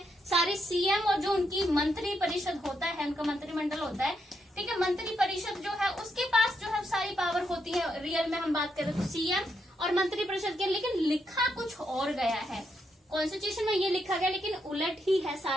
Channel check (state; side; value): normal; both; correlation 0.80